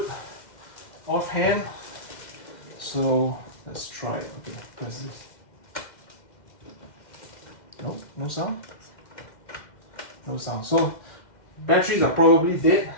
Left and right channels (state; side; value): late; right; 2.1 ms